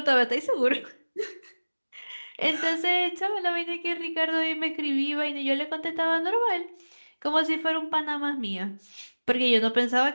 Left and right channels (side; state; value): both; inverted; correlation -1.00